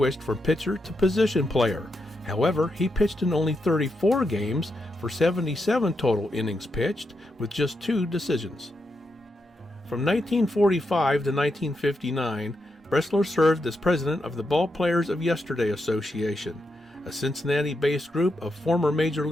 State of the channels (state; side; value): normal; both; correlation 0.84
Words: from pitcher to position player. However, he pitched in only 34 games for 77 total innings pitched, with just 2 decisions. From 1945 to 1959, Bressler served as president of the Ball Players of Yesterday Association, a Cincinnati-based group of former Major